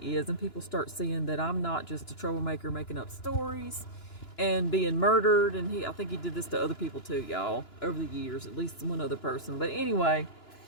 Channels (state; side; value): late; right; 2.9 ms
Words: is, and people start seeing that I'm not just a troublemaker making up stories and being murdered. And I think he did this to other people too, y'all, over the years, at least one other person. But anyway,